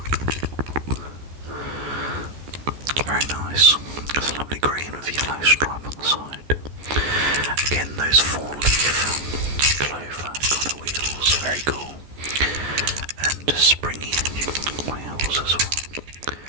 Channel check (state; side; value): late; left; 14 ms